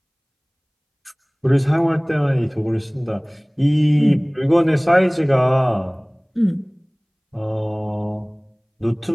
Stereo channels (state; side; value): identical; both; correlation 1.00